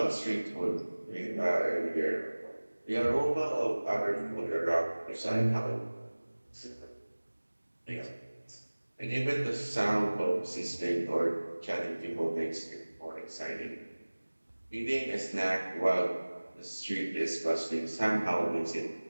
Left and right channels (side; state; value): both; inverted; correlation -1.00